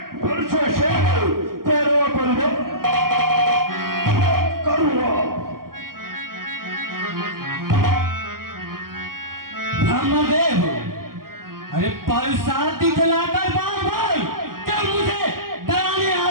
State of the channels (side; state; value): left; late; 0.92 ms